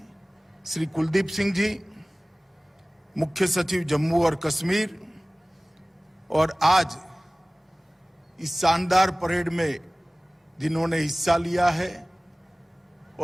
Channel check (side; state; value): both; normal; correlation 0.98